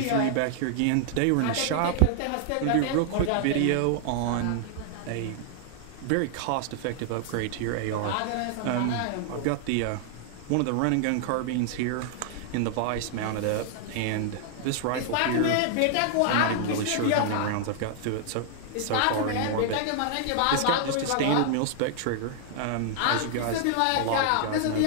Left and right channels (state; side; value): different; both; correlation -0.01